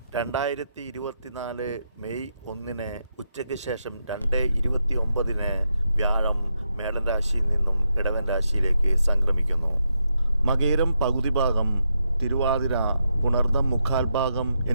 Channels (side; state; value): both; inverted; correlation -0.83